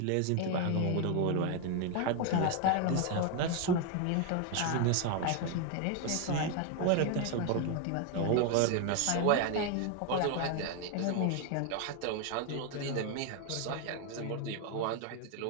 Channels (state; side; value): different; both; correlation 0.01